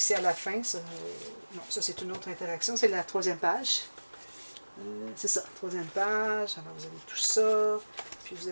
à la fin, ça, non, ça c'est une autre interaction. C'est la troisième page. C'est ça, troisième page. Alors, vous avez tout ça. Puis, vous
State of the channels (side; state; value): both; inverted; correlation -1.00